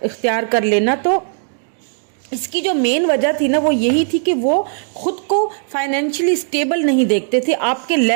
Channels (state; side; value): silent; left; digital silence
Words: इख्तियार कर लेना। तो इसकी जो मेन वजह थी ना वो यही थी कि वो खुद को फाइनेंशियली स्टेबल नहीं देखते थे, आपके